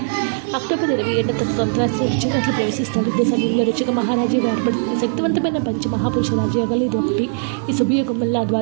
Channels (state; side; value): silent; left; digital silence